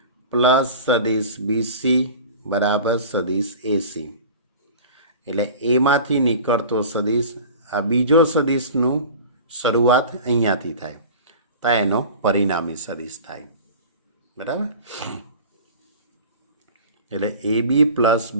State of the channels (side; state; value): both; inverted; correlation -0.38